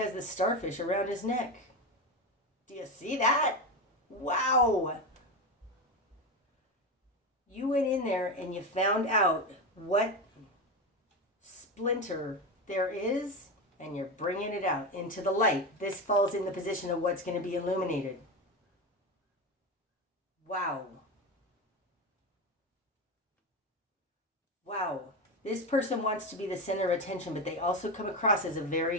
the starfish around his neck. Do you see that? Wow. You went in there and you found out what splinter there is, and you're bringing it out into the light. This falls in the position of what's going to be illuminated. Wow. Wow. This person wants to be the center of attention, but they also come across as a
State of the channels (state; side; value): normal; both; correlation 0.17